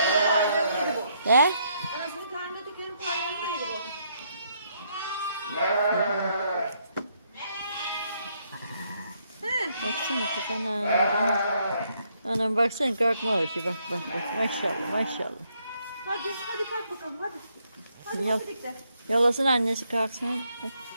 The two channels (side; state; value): both; inverted; correlation -0.73